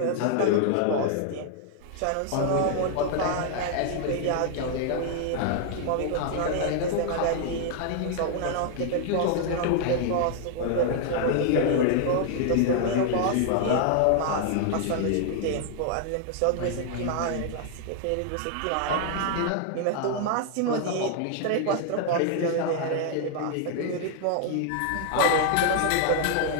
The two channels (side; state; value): both; different; correlation 0.00